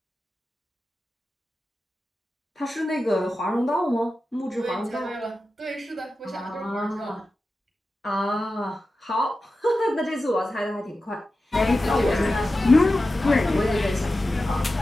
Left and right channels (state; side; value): normal; both; correlation 0.93